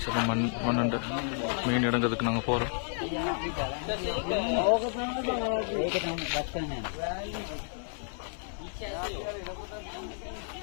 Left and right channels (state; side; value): silent; right; digital silence